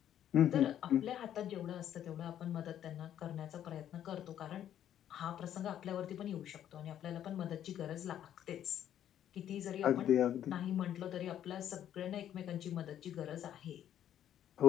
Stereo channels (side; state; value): right; quieter; 10.7 dB